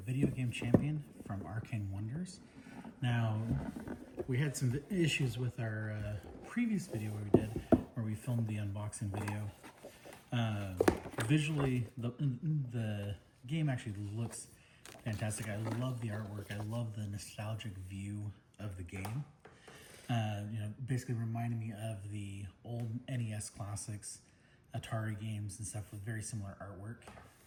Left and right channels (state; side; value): identical; both; correlation 1.00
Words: Video Game Champion from Arcane Wonders. Now, we had some issues with our previous video where we filmed the unboxing video. Visually, the game actually looks fantastic. I love the artwork. I love the nostalgic view of the game. Basically reminding me of the old NES classics, Atari games and stuff with very similar artwork.